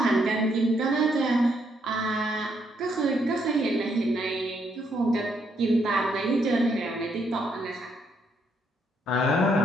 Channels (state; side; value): normal; both; correlation 0.74